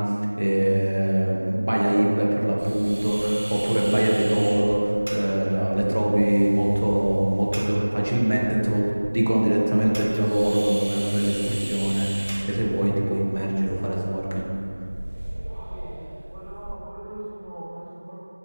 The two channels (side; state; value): both; inverted; correlation -1.00